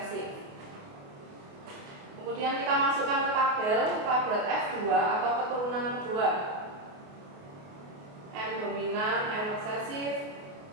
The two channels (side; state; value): left; late; 28 ms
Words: Kemudian kita masukkan ke tabel F2 atau keturunan kedua. M dominan, M resesif,